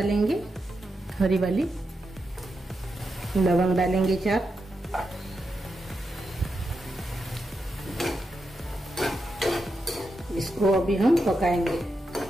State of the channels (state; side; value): normal; both; correlation 0.86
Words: हरी वाली। लवंग डालेंगे 4। इसको अभी हम पकाएंगे।